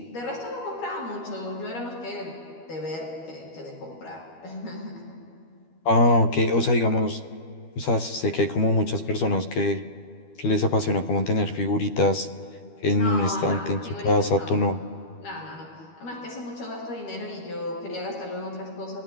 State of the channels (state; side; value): late; right; 12 ms